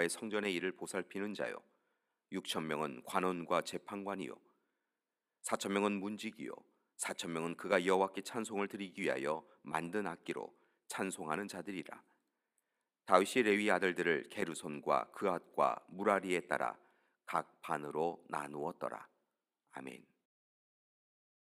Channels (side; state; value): both; identical; correlation 1.00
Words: 성전의 일을 보살피는 자요 6천 명은 관원과 재판관이요 4천 명은 문지기요 4천 명은 그가 여호와께 찬송을 드리기 위하여 만든 악기로 찬송하는 자들이라. 다윗이 레위 아들들을 게르손과 그앗과 무라리에 따라 각 반으로 나누었더라. 아멘.